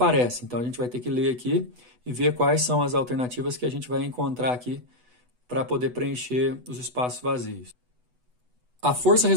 Então, a gente vai ter que ler aqui e ver quais são as alternativas que a gente vai encontrar aqui para poder preencher os espaços vazios. A força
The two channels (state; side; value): late; left; 8.1 ms